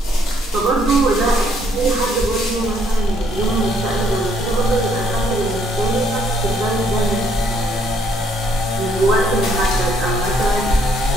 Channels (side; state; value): both; normal; correlation 0.68